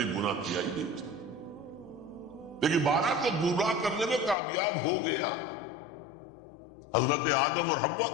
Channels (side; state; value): right; drops out; at 4.4 s